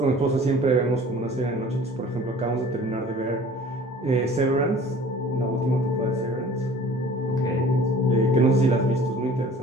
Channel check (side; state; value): both; normal; correlation 0.47